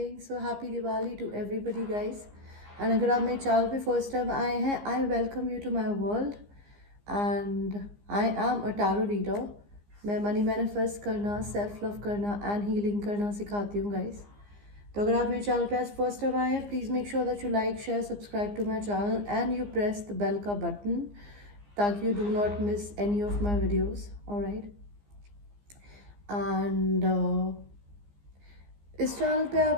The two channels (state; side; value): late; left; 15 ms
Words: So happy Diwali to everybody guys. And अगर आप मेरे channel पे first time आए हैं, I welcome you to my world. And I am a tarot reader. मैं money manifest करना, self love करना and healing करना सिखाती हूँ गाइस. तो अगर आप मेरे चैनल पे आज फर्स्ट टाइम आए हैं, please make sure that you like share subscribe to my channel and you press the bell का बटन ताकि you do not miss any of my videos. Alright. And इस चैनल पे